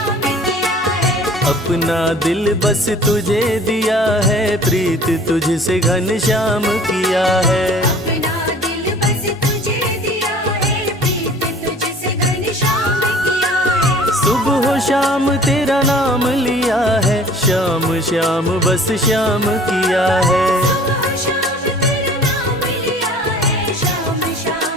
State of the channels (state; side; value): normal; both; correlation 0.49